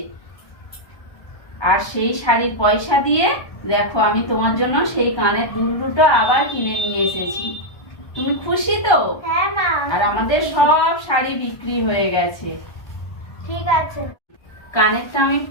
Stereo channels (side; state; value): right; late; 1.3 ms